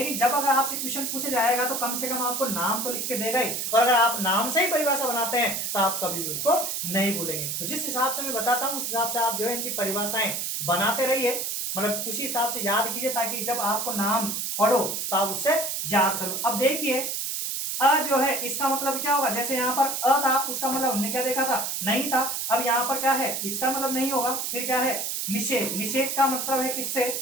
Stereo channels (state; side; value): noise; right; hiss, 2 dB below the sound